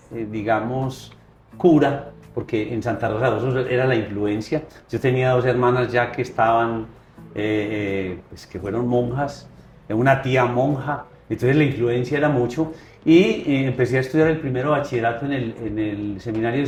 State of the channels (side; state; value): both; identical; correlation 1.00